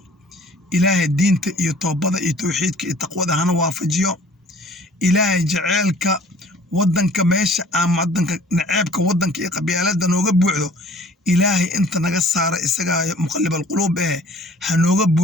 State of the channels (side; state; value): both; normal; correlation 0.52